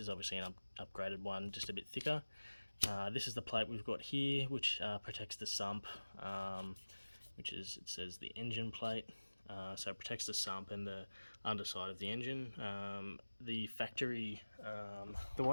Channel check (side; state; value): both; inverted; correlation -1.00